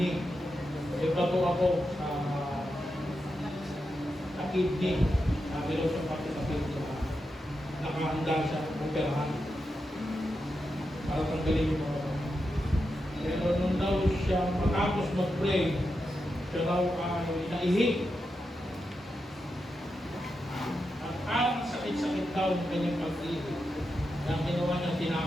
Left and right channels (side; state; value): both; normal; correlation 0.87